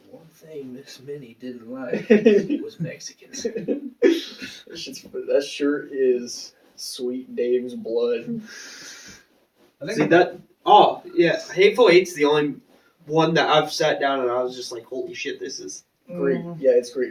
One thing Miss Minnie didn't like that was Mexicans. sure is Sweet Dave's blood. I think See that? Oh yeah, Hateful Eight's the only one that I've sat down and I was just like, holy shit, this is Great, yeah, it's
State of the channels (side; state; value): both; identical; correlation 1.00